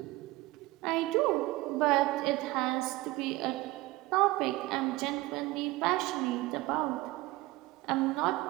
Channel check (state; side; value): quieter; left; 19.7 dB